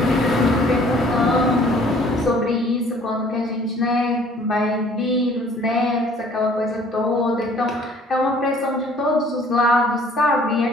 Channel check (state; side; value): normal; both; correlation 0.56